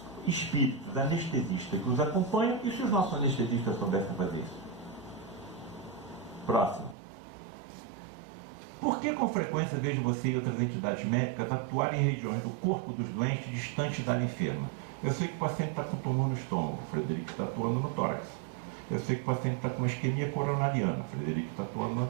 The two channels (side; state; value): left; drops out; at 7.0 s